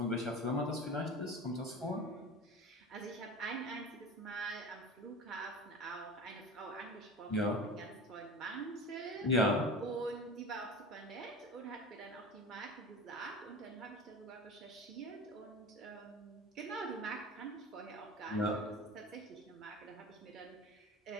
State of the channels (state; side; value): normal; both; correlation 0.33